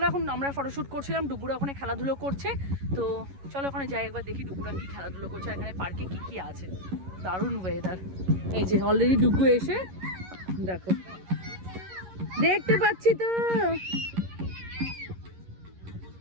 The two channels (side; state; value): left; late; 11 ms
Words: এখন আমরা ফটোশ্যুট করছিলাম, ডুগুরা ওখানে খেলাধুলো করছে। তো চলো ওখানে যাই, একবার দেখি ডুগুরা কি খেলাধুলো করছে, এখানে পার্কে কি কি আছে। দারুণ ওয়েদার। এই যে অলরেডি ডুগু এসে দেখো, দেখতে পাচ্ছি তো